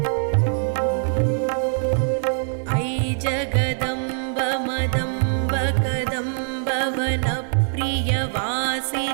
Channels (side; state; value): left; silent; digital silence